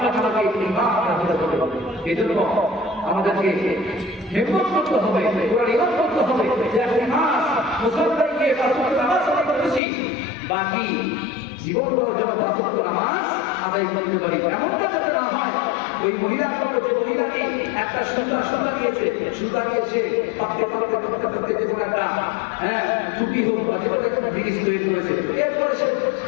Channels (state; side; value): drops out; right; at 9.8 s